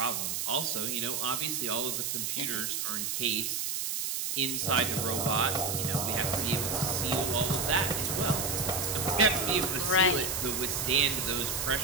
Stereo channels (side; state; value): right; noise; hiss, 1 dB below the sound